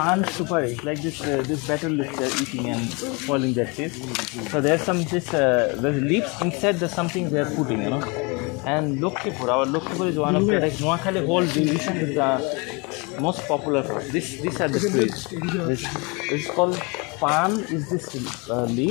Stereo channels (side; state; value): right; quieter; 29.5 dB